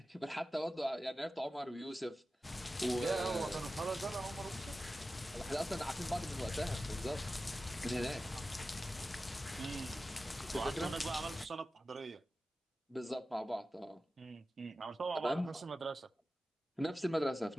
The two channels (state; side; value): normal; both; correlation 0.94